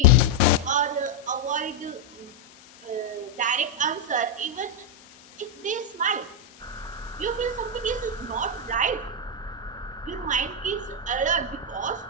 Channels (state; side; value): normal; both; correlation -0.01